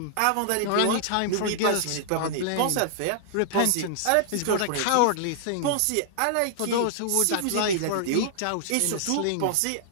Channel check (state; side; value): different; both; correlation -0.01